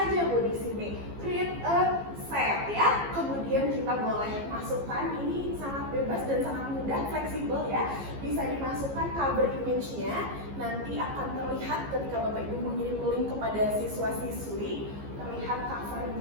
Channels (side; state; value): left; late; 15 ms